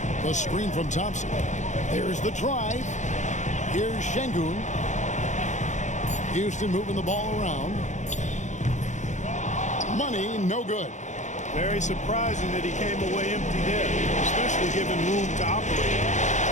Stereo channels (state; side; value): late; right; 0.35 ms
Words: The screen from Thompson. There's the drive. Here's Şengün. Houston moving the ball around. Money, no good. Very surprising that he came away empty there, especially given room to operate.